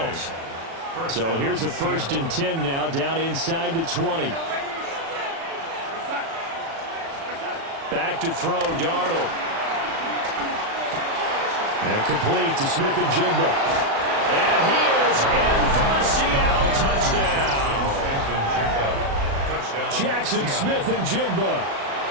So here's a 1st and 10 now, down inside the 20. Back to throw, Darnold. And complete to Smith-Njigba. And he is in for the Seattle touchdown. Jackson Smith-Njigba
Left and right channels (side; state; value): left; late; 36 ms